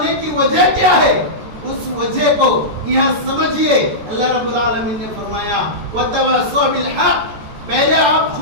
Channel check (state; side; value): late; left; 14 ms